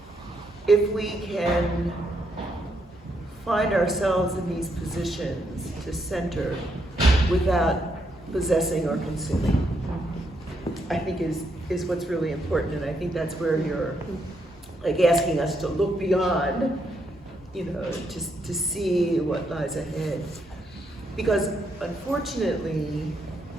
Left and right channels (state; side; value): normal; both; correlation 0.77